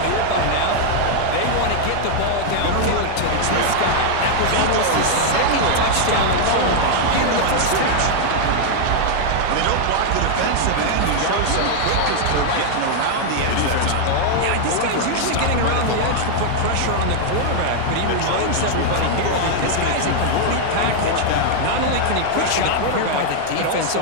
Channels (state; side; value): different; both; correlation 0.00